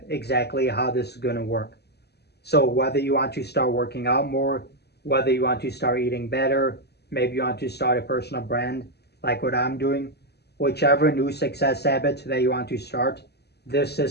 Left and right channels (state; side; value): late; right; 0.48 ms